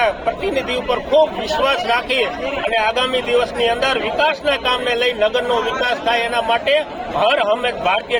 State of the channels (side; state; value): both; identical; correlation 1.00